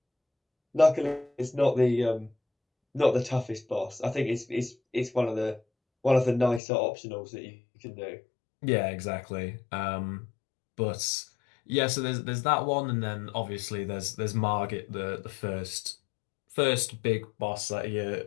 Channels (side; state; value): right; drops out; at 6.6 s